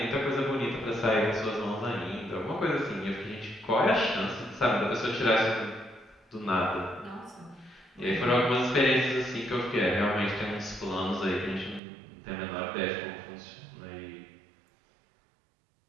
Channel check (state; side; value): drops out; left; at 11.8 s